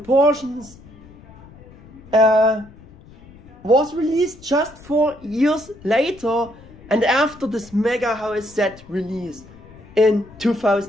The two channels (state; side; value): noise; left; rumble, 22 dB below the sound